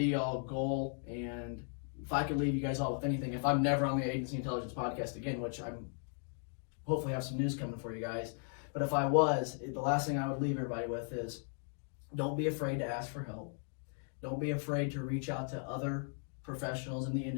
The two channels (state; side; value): silent; right; 53 dB below the other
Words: all goal. And if I could leave you guys all with anything, if I'm never on the Agency Intelligence podcast again, which I'm hopefully have some news coming for you guys, but if I was, the last thing I would leave everybody with is don't be afraid to ask for help. Don't be afraid to reach out to other professionals in the